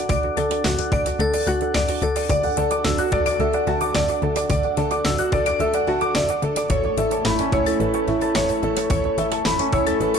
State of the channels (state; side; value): normal; both; correlation 0.64